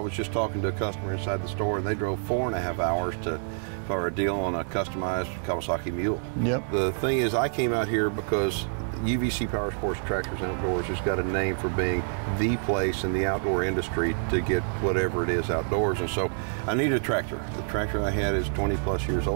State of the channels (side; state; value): left; silent; digital silence